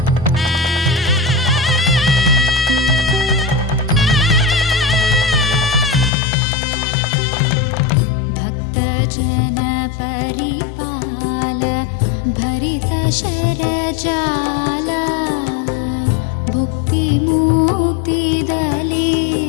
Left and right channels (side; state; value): right; drops out; at 6.1 s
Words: जन परिपाल भरित शरजाल भुक्ति मुक्ति